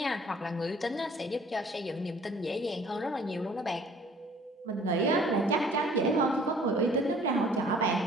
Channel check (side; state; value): both; normal; correlation 0.54